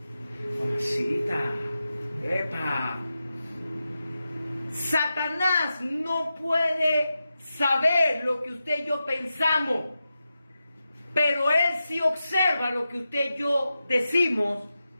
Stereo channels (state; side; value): inverted; both; correlation -0.91